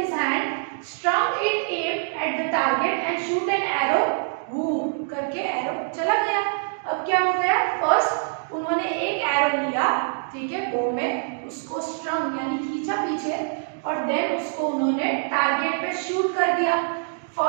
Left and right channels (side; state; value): left; silent; digital silence